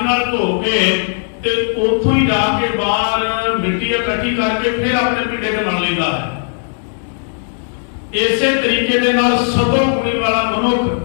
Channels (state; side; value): silent; right; digital silence